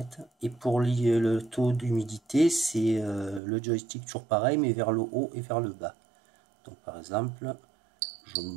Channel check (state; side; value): drops out; left; at 3.4 s